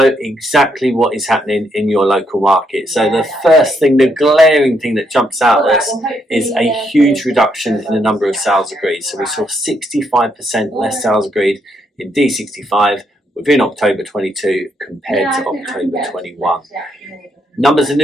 exactly what is happening in your local market. So the first thing, the glaring thing that jumps out at us is a huge reduction in the number of sales agreed. So we saw 65% less sales agreed in DE65 within October 22 compared to October 21. Numbers of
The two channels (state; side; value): normal; both; correlation 0.76